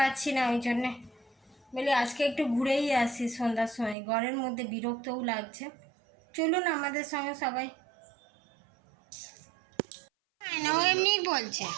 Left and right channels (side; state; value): left; drops out; at 4.0 s